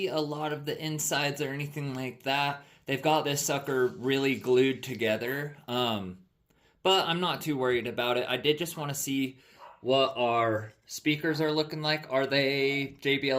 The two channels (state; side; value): identical; both; correlation 1.00